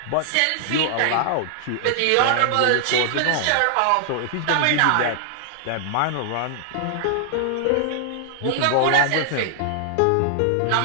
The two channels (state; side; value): different; both; correlation 0.00